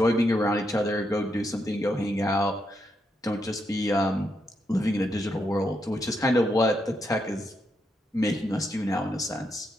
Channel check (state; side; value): normal; both; correlation 0.81